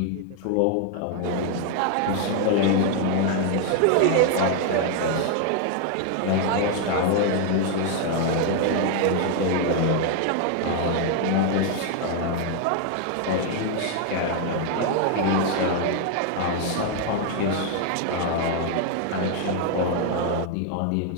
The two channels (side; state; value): both; different; correlation 0.00